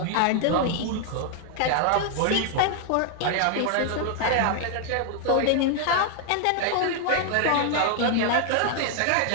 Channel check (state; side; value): different; both; correlation 0.00